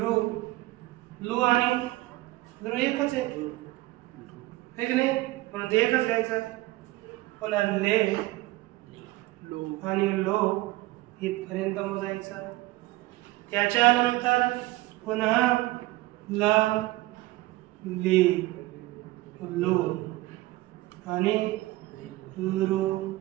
लू आणि लू एकच आहे की नाही, म्हणून ते एकच घ्यायचं. पुन्हा ले आणि लो इथपर्यंत मोजायचं. त्याच्यानंतर पुन्हा ल ली लू आणि लू.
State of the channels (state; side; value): quieter; left; 18.7 dB